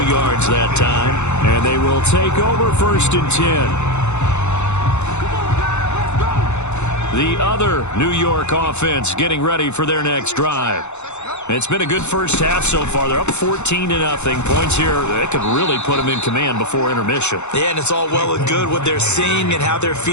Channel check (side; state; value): right; late; 0.82 ms